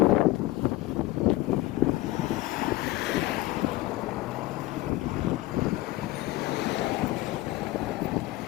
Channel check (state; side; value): quieter; right; 17.5 dB